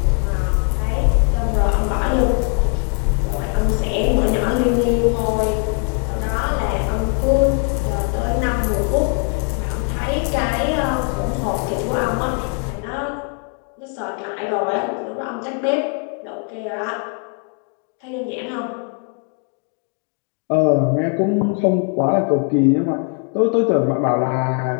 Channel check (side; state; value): right; quieter; 37.0 dB